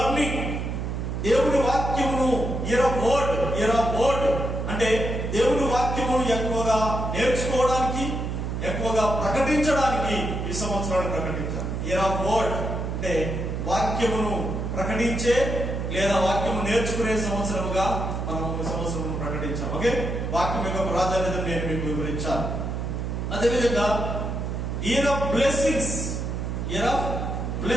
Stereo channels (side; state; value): right; noise; hum, 3 dB below the sound